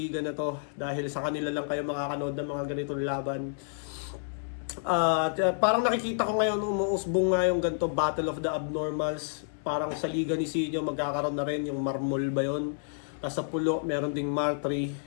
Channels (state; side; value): silent; right; digital silence